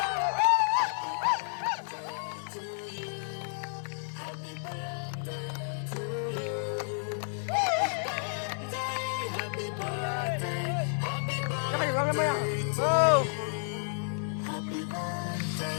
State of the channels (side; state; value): right; silent; 57 dB below the other